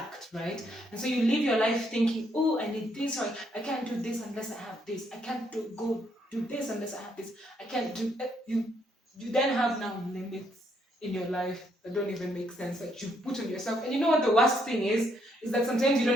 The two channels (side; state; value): both; normal; correlation 0.73